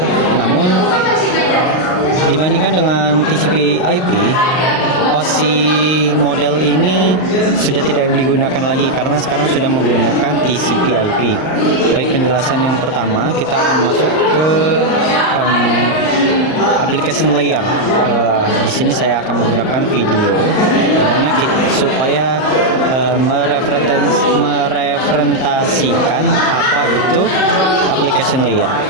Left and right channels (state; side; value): late; right; 39 ms